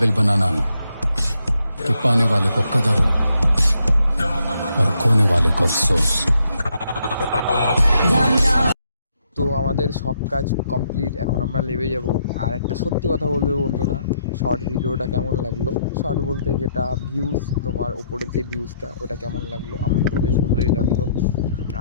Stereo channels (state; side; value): inverted; both; correlation -0.74